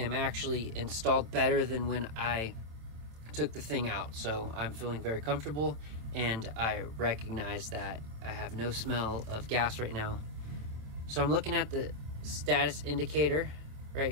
actually installed better than when I took the thing out. So I'm feeling very comfortable and I recognize that I have no smell of gas right now. So I'm looking at the status indicator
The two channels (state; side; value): late; left; 26 ms